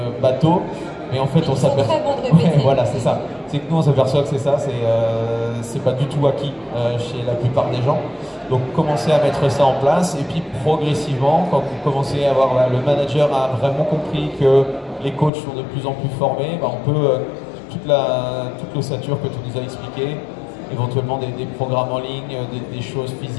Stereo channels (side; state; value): right; drops out; at 15.3 s